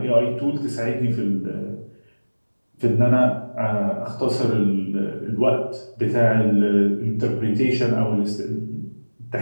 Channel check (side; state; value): both; inverted; correlation -1.00